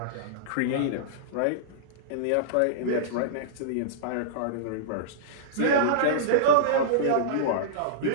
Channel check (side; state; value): both; different; correlation -0.03